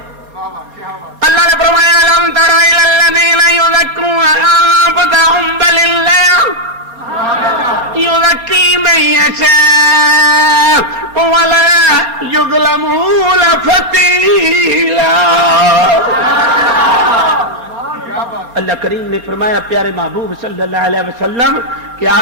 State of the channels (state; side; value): late; left; 4.3 ms